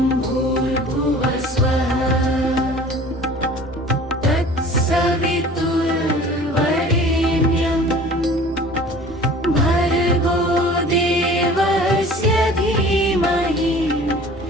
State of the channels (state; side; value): normal; both; correlation 0.45